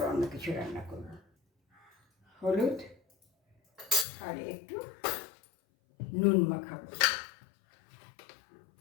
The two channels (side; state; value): right; drops out; at 4.0 s